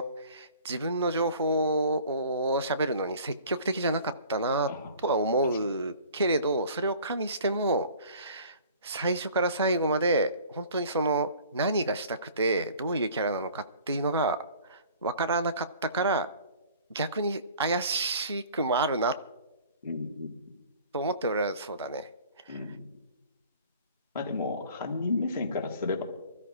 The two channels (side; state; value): both; inverted; correlation -0.48